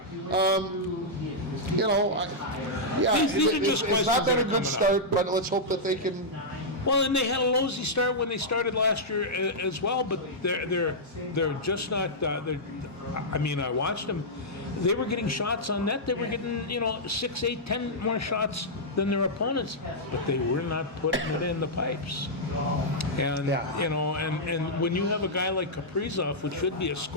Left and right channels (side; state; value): both; normal; correlation -0.09